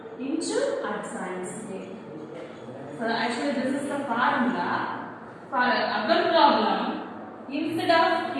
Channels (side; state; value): both; identical; correlation 1.00